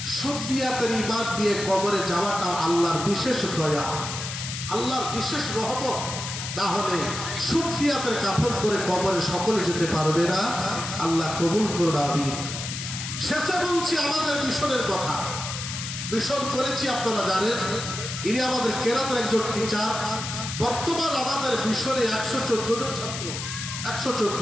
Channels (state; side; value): noise; left; hiss, 6 dB below the sound